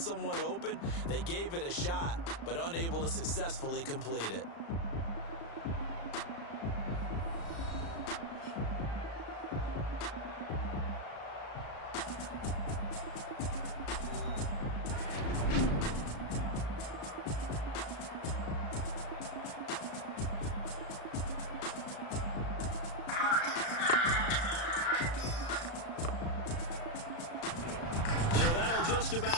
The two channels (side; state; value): right; late; 35 ms